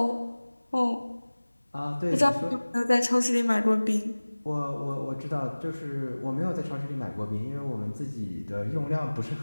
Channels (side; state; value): both; inverted; correlation -1.00